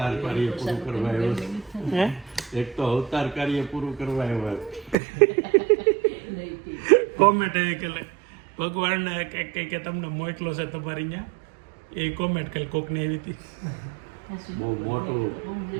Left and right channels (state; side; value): drops out; left; at 5.0 s